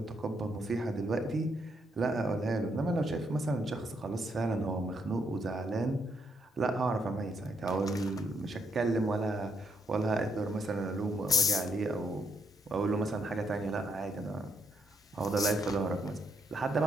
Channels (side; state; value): both; normal; correlation 0.74